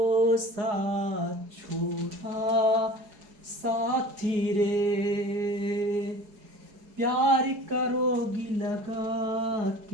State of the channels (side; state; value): left; late; 4.7 ms